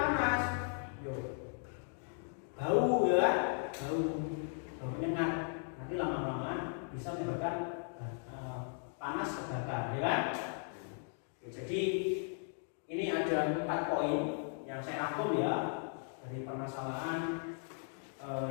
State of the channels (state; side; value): silent; right; 53 dB below the other